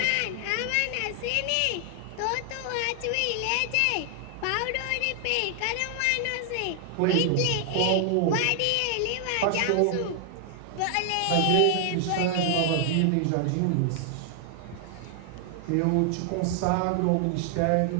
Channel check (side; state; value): both; different; correlation 0.00